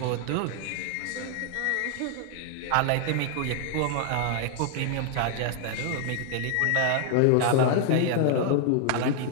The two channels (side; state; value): both; different; correlation 0.00